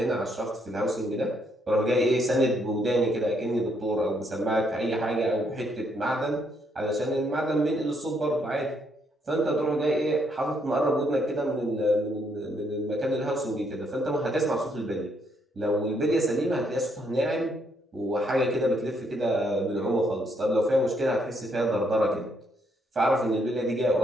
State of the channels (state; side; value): normal; both; correlation 0.73